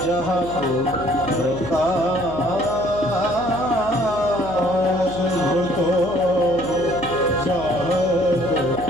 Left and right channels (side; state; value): right; noise; hum, 11 dB below the sound